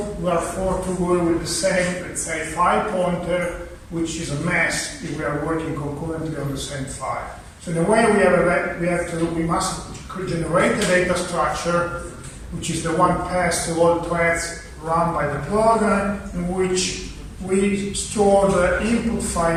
we are forced to work with the same, let's say, file pointer, which is a mess if we are working concurrently on the same file. So in a way, we must generate a data structure, which is the one passed to all threads run by the program, in which we store the input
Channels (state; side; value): identical; both; correlation 1.00